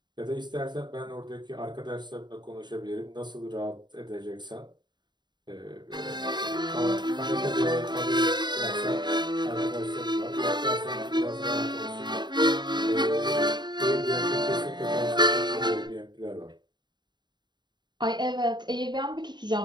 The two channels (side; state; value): left; late; 0.21 ms